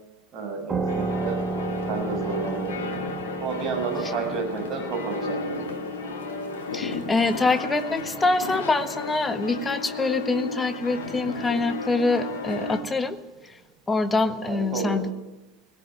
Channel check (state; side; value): normal; both; correlation 0.58